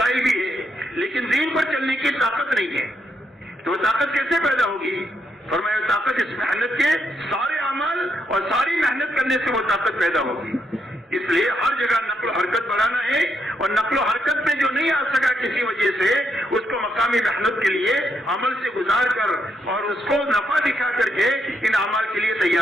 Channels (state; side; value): normal; both; correlation 0.78